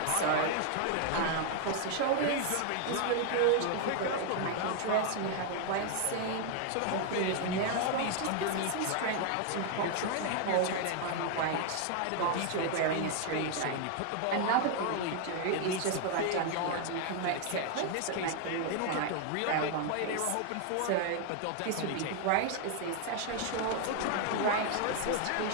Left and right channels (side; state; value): both; different; correlation 0.00